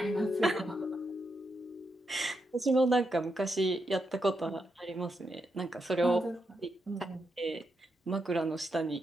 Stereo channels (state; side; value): normal; both; correlation 0.83